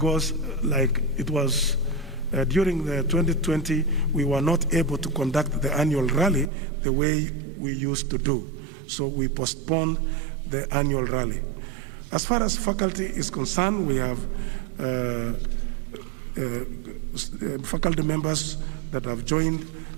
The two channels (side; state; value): left; drops out; at 6.5 s